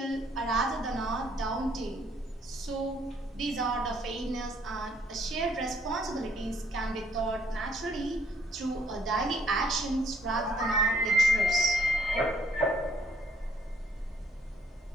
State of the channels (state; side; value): normal; both; correlation 0.66